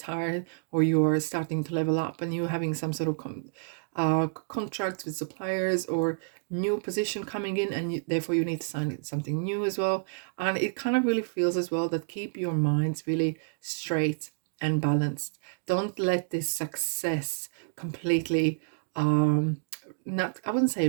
or you are starting to level up and you're having some sort of contracts with suppliers or new position coming in, and therefore you need to sign something new as well. And it kind of really feels as well that keep your minds really straight and balanced. Don't let this success completely not, I wouldn't say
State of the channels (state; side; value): silent; left; digital silence